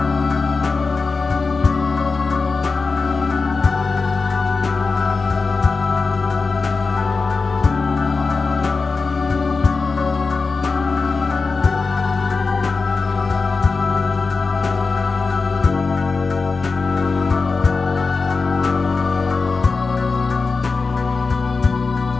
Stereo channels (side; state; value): right; quieter; 4.3 dB